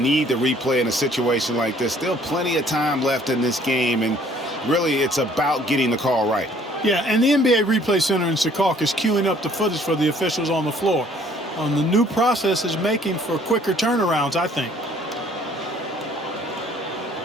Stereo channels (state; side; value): normal; both; correlation 0.59